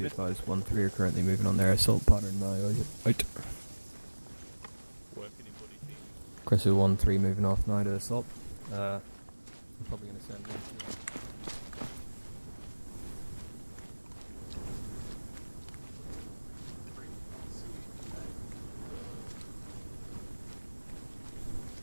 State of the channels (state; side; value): inverted; both; correlation -1.00